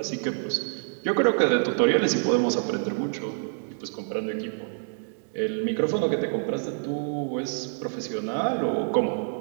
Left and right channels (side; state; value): left; silent; digital silence